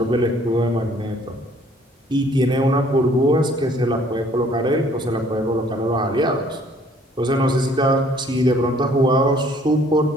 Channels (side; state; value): both; normal; correlation 0.59